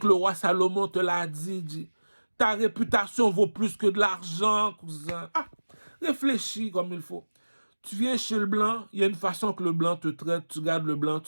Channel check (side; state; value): both; inverted; correlation -1.00